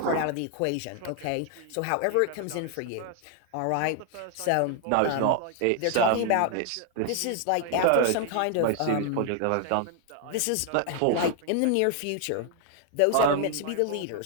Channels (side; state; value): both; different; correlation 0.00